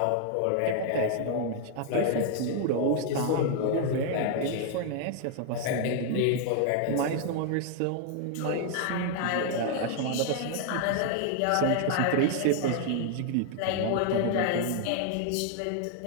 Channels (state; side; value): different; both; correlation 0.00